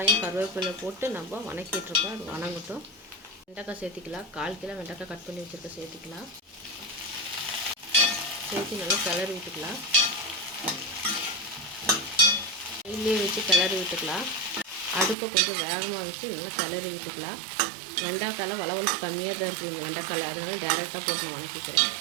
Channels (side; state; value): left; drops out; at 15.2 s